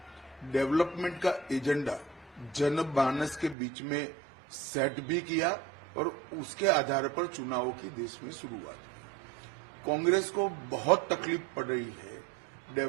डेवलपमेंट का एजेंडा जनमानस के बीच में सेट भी किया और उसके आधार पर चुनावों की देश में शुरुआत हुई। कांग्रेस को बहुत तकलीफ पड़ रही है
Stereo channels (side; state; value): left; drops out; at 3.6 s